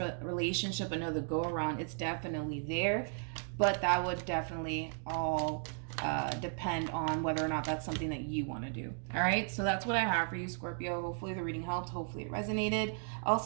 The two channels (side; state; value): left; silent; 54 dB below the other